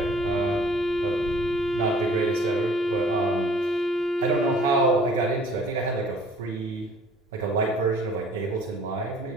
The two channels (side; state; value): both; normal; correlation 0.54